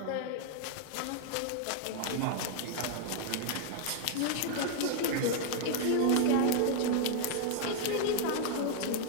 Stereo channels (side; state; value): both; different; correlation -0.01